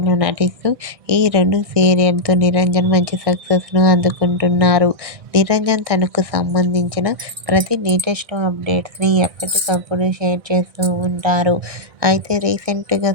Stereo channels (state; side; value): late; left; 1.6 ms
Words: నటిస్తూ ఈ రెండు సీరియల్తో నిరంజన్ మంచి సక్సెస్ను అందుకుంటున్నారు. నిరంజన్ తనకు సంబంధించిన ప్రతి లేటెస్ట్ అప్డేట్స్ని ఎప్పటికప్పుడు షేర్ చేస్తూ ఉంటారు. అయితే రీసెంట్గా